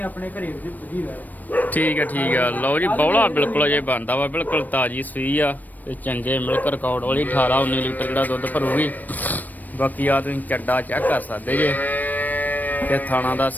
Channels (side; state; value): right; late; 0.085 ms